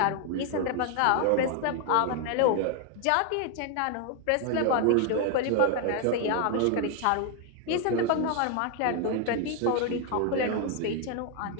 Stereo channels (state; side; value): different; both; correlation 0.01